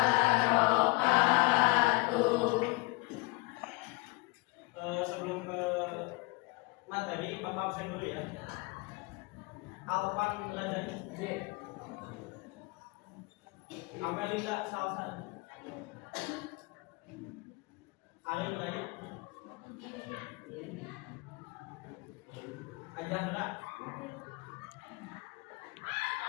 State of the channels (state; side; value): quieter; right; 25.8 dB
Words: Sebelum ke materi, Bapak absen dulu ya. Alpan Rajani. Amelinda Salsa. Ari Raya. Ajahra.